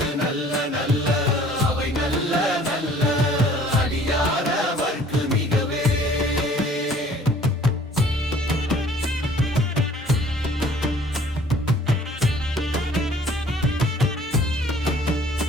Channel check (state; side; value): normal; both; correlation 0.54